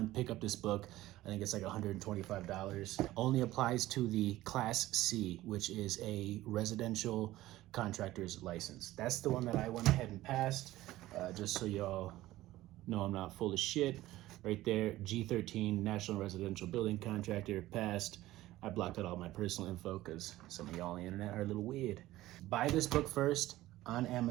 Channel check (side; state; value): left; quieter; 16.2 dB